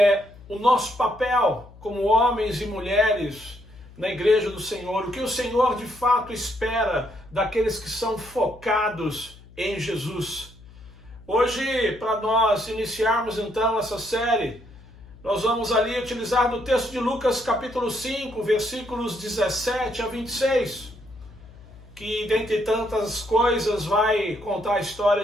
o nosso papel como homens e mulheres na igreja do Senhor, o que o Senhor de fato espera daqueles que são focados em Jesus. Hoje, para nós iniciarmos então essa série, nós vamos ali utilizar do texto de Lucas capítulo 5, versículos 17 a 26, que dentre tantas coisas vai contar a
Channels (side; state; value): left; noise; hum, 21 dB below the sound